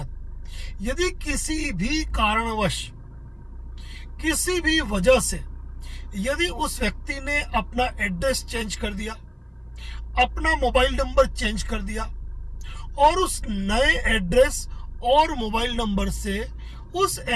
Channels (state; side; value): identical; both; correlation 1.00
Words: यदि किसी भी कारणवश, किसी भी वजह से यदि उस व्यक्ति ने अपना एड्रेस चेंज कर दिया, अपना मोबाइल नंबर चेंज कर दिया और उस नए एड्रेस और मोबाइल नंबर से उस